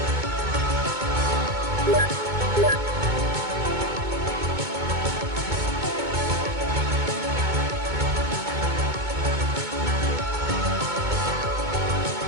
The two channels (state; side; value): late; left; 2.2 ms